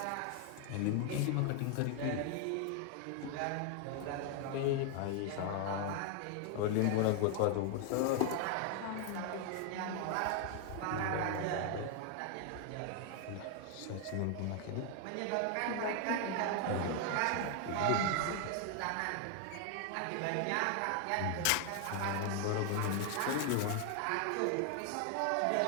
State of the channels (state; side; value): different; both; correlation 0.00